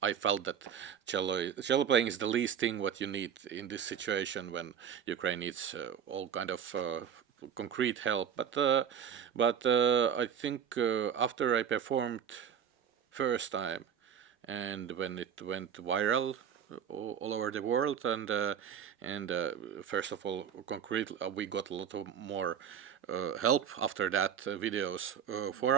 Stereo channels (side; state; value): left; quieter; 8.4 dB